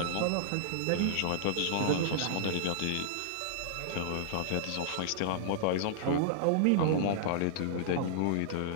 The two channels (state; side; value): different; both; correlation -0.02